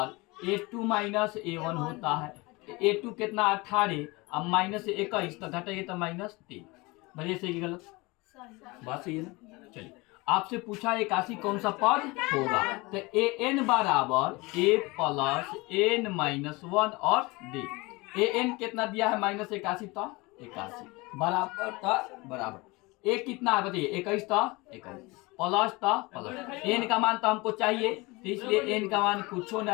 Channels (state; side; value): quieter; right; 24.2 dB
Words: a2 - a1 होता है, a2 कितना 18 अब -21 तो घटेगा तो -3, बढ़िया सही कि गलत, बात सही है ना। चलिए आपसे पूछा 81 कौन सा पद होगा, तो an बराबर a प्लस n -1 और d। an कितना दिया है -81 तो 81 बराबर था बराबर a कितना है बताइए, 21 था 21 प्लस था प्लस n का मान तो हमको चाहिए, तो इसलिए n का मान कुछ